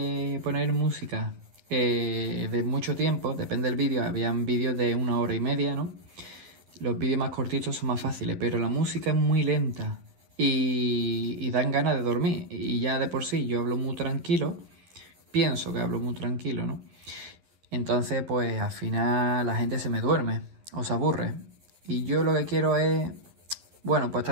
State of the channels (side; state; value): left; late; 11 ms